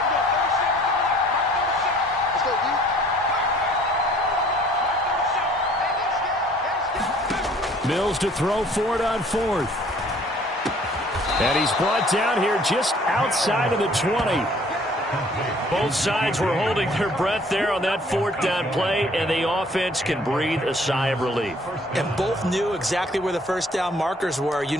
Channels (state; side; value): normal; both; correlation 0.56